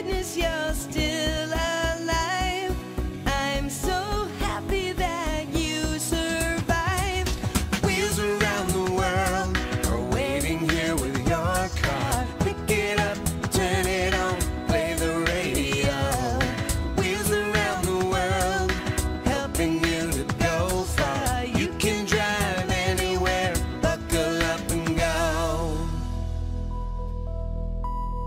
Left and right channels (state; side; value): identical; both; correlation 1.00